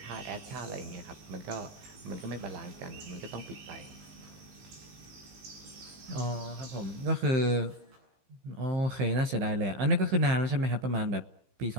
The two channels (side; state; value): left; late; 15 ms